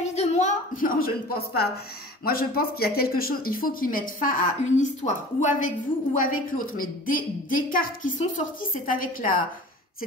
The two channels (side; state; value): both; normal; correlation 0.41